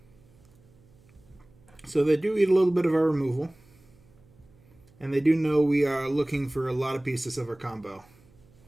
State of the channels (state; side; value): noise; right; hum, 28 dB below the sound